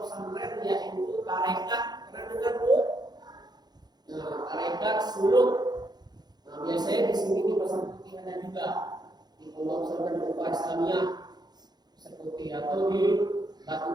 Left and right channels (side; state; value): left; late; 0.20 ms